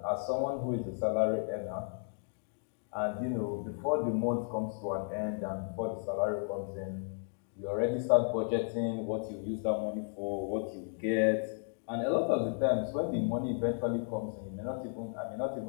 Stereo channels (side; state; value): right; silent; 55 dB below the other